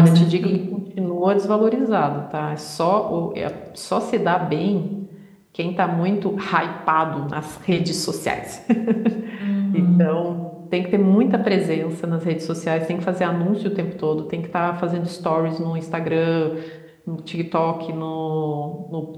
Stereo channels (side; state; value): both; identical; correlation 1.00